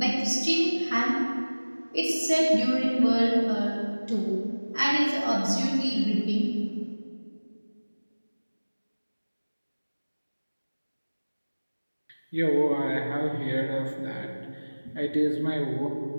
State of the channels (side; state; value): both; inverted; correlation -1.00